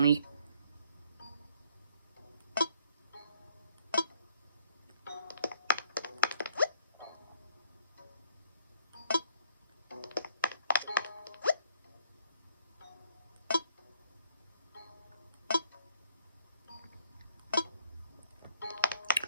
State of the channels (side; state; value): both; inverted; correlation -0.64